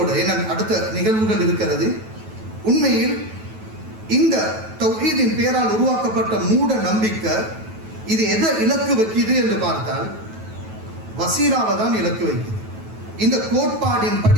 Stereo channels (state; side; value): late; left; 9.2 ms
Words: அடுத்த நிகழ்வுகள் இருக்கிறது. உண்மையில் இந்த தௌஹீதின் பேரால் உருவாக்கப்பட்ட மூட நம்பிக்கை இது எதை இலக்கு வைக்குது என்று பார்த்தால் வசீலாவை தான் இலக்கு வைக்குது. இந்த கோட்பாடின்